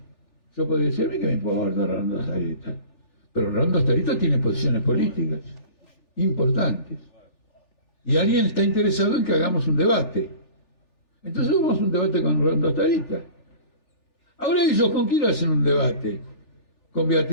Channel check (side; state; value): right; late; 3.4 ms